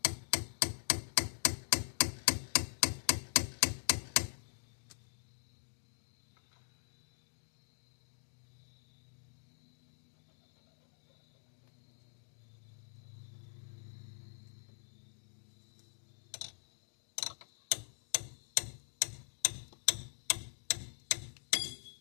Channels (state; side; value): silent; right; digital silence